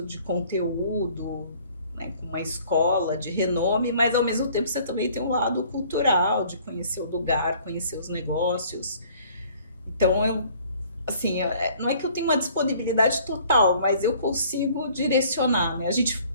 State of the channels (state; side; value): inverted; both; correlation -0.55